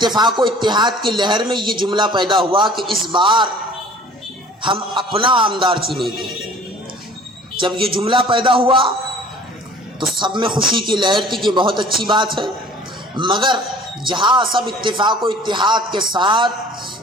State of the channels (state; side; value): normal; both; correlation 0.48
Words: و اتحاد کی لہر میں یہ جملہ پیدا ہوا کہ اس بار ہم اپنا آمدار چنیں گے۔ جب یہ جملہ پیدا ہوا تو سب میں خوشی کی لہر تھی کہ بہت اچھی بات ہے، مگر جہاں سب اتفاق و اتحاد کے ساتھ